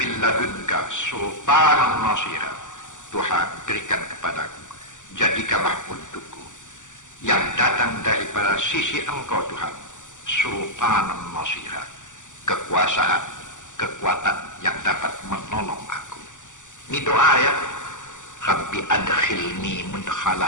ladunka sultanan nasira. Tuhan, berikan kepadaku, jadikanlah untukku yang datang daripada sisi engkau Tuhan, sultanan nasira, kekuasaan, kekuatan yang dapat menolong aku. Ini doa, ya. Rabbi adkhilni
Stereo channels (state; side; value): late; right; 0.86 ms